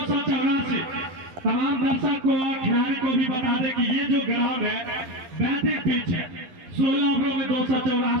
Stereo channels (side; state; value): left; late; 11 ms